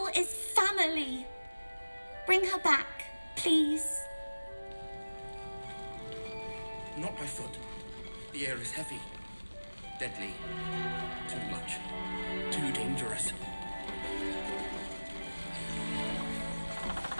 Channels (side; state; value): both; inverted; correlation -1.00